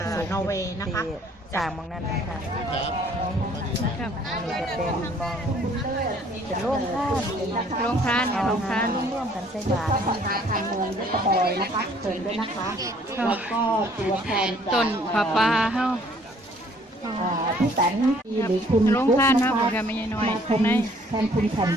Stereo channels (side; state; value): both; normal; correlation 0.59